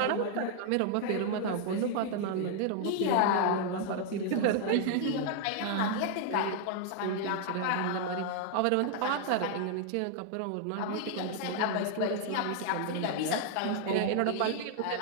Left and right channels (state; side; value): different; both; correlation 0.00